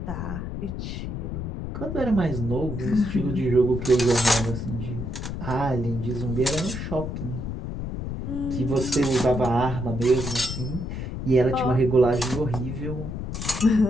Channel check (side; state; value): left; noise; rumble, 5 dB below the sound